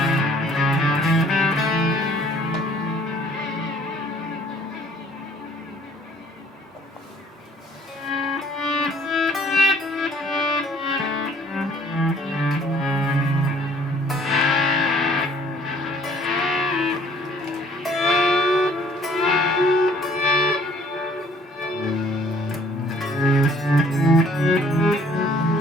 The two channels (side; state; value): both; normal; correlation 0.58